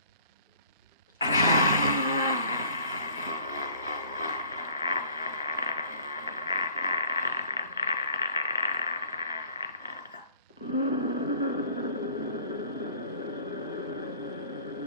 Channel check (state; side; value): inverted; both; correlation -0.53